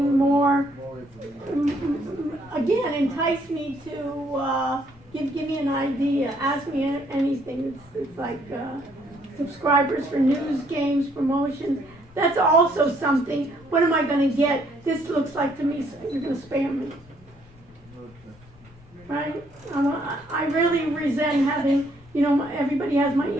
More, again, entice me to, give me an idea, ask me anything. It's like, subscribers for news, games, promotions. That's also something. What am I gonna get? This looks like to me, you're gonna spam me. Right? I really resent having, you know, everybody has my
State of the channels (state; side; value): noise; left; rumble, 25 dB below the sound